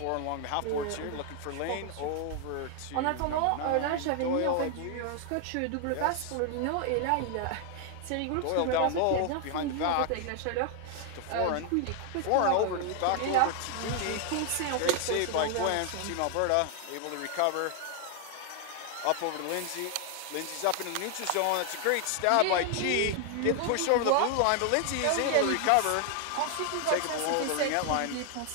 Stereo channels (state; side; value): different; both; correlation 0.00